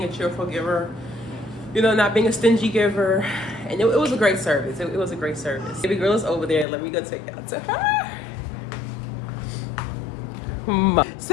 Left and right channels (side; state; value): right; drops out; at 6.7 s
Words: a cheerful giver, you know, not being a stingy giver. And it was a great service. It was a great service. Baby girl is over there. Let me go take y'all to her.